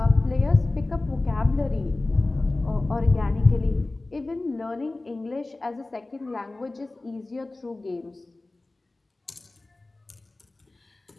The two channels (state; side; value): quieter; right; 3.0 dB